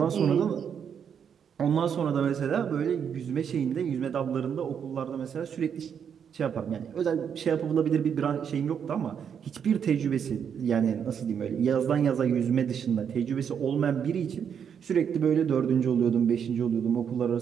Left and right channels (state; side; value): quieter; left; 7.7 dB